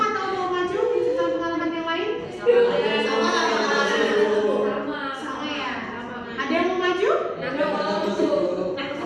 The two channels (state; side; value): identical; both; correlation 1.00